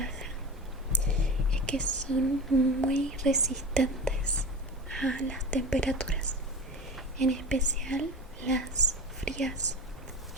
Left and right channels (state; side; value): normal; both; correlation 0.30